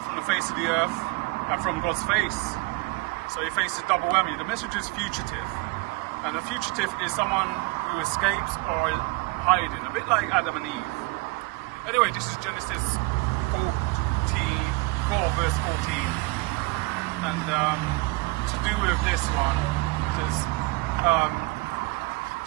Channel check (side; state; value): left; quieter; 23.8 dB